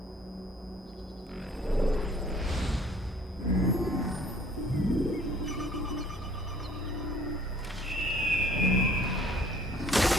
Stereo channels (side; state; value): both; normal; correlation 0.56